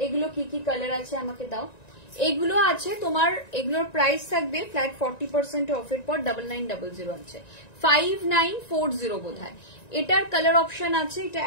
এগুলো কি কি কালার আছে আমাকে দাও। এগুলো আছে তোমার, এগুলোর প্রাইস থাকবে ফ্ল্যাট 40% অফের পর 9900 আছে, 5940 বোধ হয়। এটার কালার অপশন আছে, এটা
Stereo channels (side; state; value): right; late; 1.9 ms